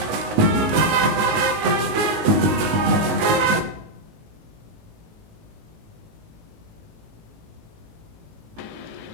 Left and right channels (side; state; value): left; late; 18 ms